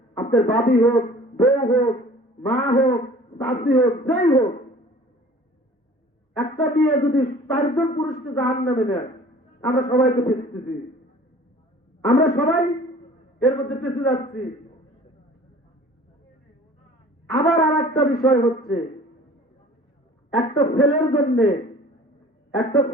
আপনার বাবি হোক, বউ হোক, মা হোক, চাষি হোক, যেই হোক, একটা মেয়ে যদি 4জন পুরুষকে জাহান্নামে নেয়, আমরা সবাই তো পেঁচতেছি, আমরা সবাই এর মধ্যে পেঁচে যাচ্ছি। আবার আর একটা বিষয় হচ্ছে, একটা ছেলের জন্য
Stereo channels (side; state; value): both; normal; correlation 0.47